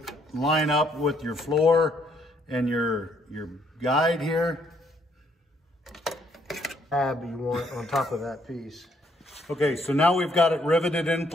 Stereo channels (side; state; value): both; normal; correlation 0.69